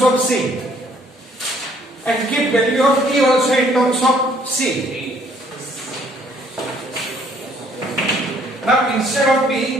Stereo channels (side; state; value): both; normal; correlation 0.62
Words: of c and keep value of e also in terms of c. Now instead of